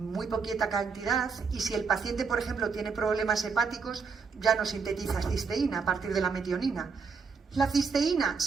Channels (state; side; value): quieter; left; 5.2 dB